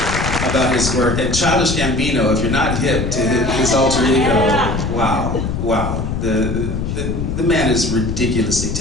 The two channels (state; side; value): noise; left; rumble, 3 dB below the sound